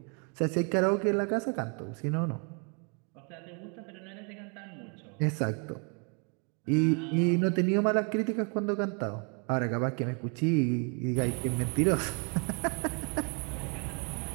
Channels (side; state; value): left; quieter; 36.3 dB